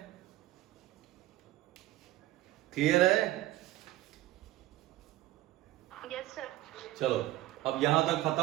क्लियर है? Yes sir. चलो अब यहां तक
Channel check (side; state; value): left; quieter; 16.3 dB